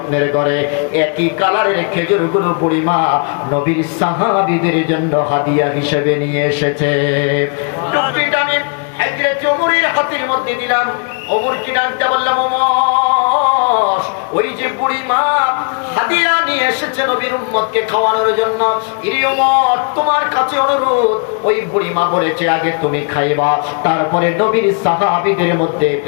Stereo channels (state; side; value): quieter; right; 39.5 dB